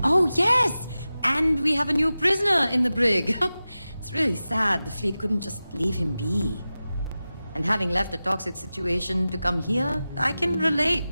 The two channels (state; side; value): inverted; both; correlation -0.95